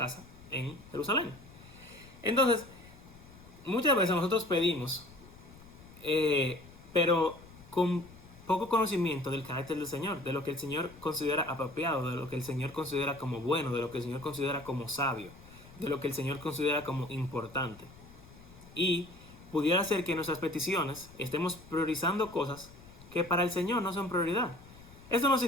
en Jerusalén. Entonces, muchas veces nosotros pedimos, pero con poco conocimiento del carácter del Señor, de lo que el Señor considera apropiado, de lo que el Señor considera como bueno, de lo que el Señor considera como sabio, de lo que el Señor considera como importante. Y pudiera ser que en nuestras peticiones estemos priorizando cosas que para el Señor no son prioridad. Esto no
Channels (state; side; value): noise; left; rumble, 21 dB below the sound